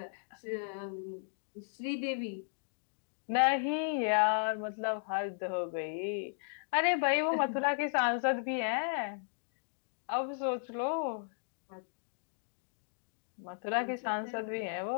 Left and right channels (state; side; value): silent; right; digital silence